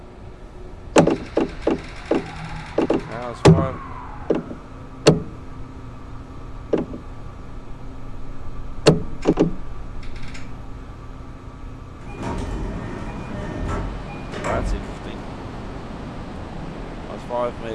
was 5. That's interesting. I was 5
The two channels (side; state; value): both; identical; correlation 1.00